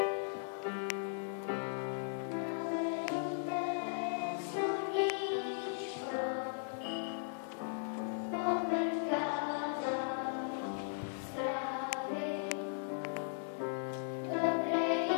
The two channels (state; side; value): silent; right; 53 dB below the other